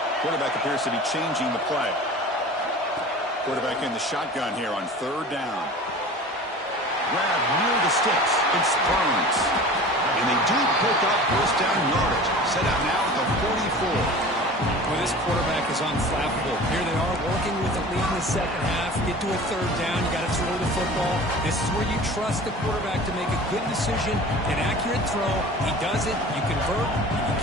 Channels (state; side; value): normal; both; correlation 0.39